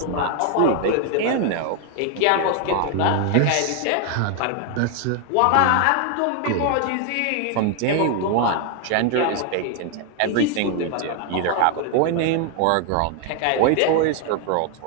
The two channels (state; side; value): different; both; correlation 0.00